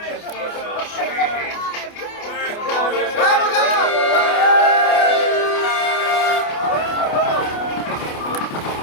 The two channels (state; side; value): late; right; 28 ms